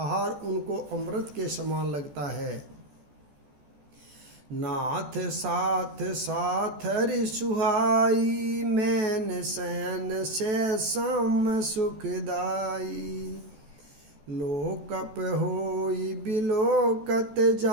उनको अमृत के समान लगता है। नाथ साथ साथ हरि सुहाई, मैन शयन से सम सुखदाई। लोकप होई बिलोकत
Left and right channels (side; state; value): left; late; 14 ms